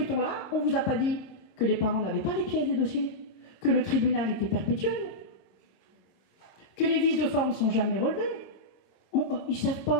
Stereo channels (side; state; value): right; late; 25 ms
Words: on ne vous a pas dit que les parents n'avaient pas les pièces des dossiers, que le tribunal était perpétuel, que les vices de forme ne sont jamais relevés. Ils ne savent